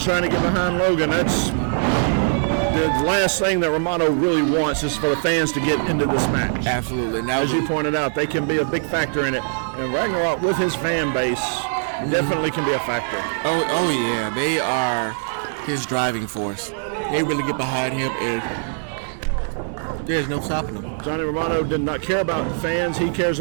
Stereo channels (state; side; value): silent; left; digital silence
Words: trying to get behind Logan. That's the last thing that Romano really wants is for the fans to get into this match. Absolutely. Now, as you pointed out, they can be a big factor in it. And Ragnarok, with his fan base, definitely can be a factor. Oh yeah. They are his driving force. They really get behind him, and there's no stopping him. Johnny Romano did not care about fans. He cares